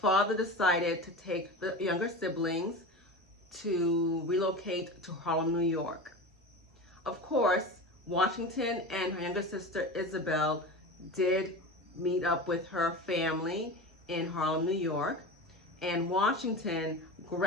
decided to take the younger siblings to relocate to Harlem, New York. Of course, Washington and her younger sister Isabel did meet up with her family in Harlem, New York, and Washington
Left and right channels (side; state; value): both; normal; correlation 0.28